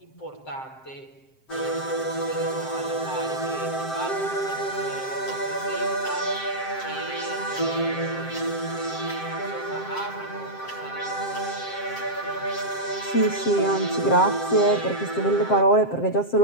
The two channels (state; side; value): late; right; 7.6 ms